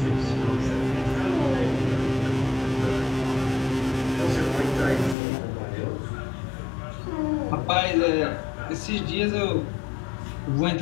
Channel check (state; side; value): drops out; right; at 5.2 s